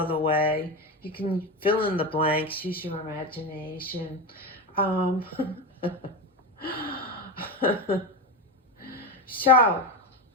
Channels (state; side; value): normal; both; correlation 0.18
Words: way. You can fill in the blanks, use your imagination. So,